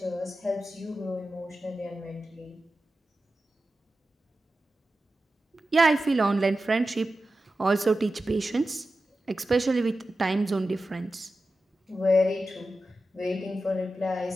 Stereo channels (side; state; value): both; normal; correlation 0.93